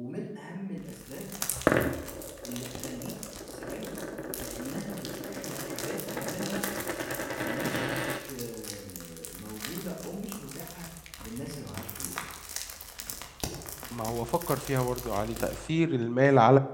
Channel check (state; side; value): identical; both; correlation 1.00